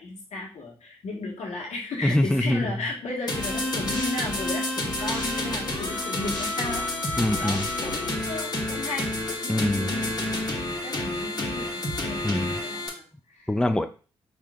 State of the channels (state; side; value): normal; both; correlation 0.67